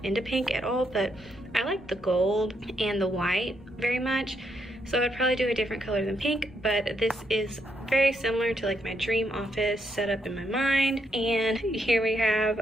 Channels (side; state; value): both; normal; correlation 0.77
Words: into pink at all, but I like the gold and the white very much. So I'd probably do a different color than pink, but this is very similar to like my dream office set up in my mind. And here we